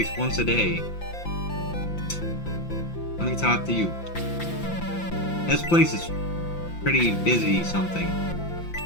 once a day. Let me talk to you. This place is pretty busy something.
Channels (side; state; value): right; late; 5.8 ms